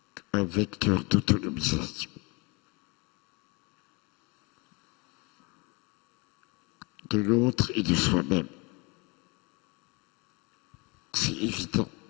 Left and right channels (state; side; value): quieter; right; 28.6 dB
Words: un vecteur d'autonomisation. De l'autre et de soi-même. C'est évident.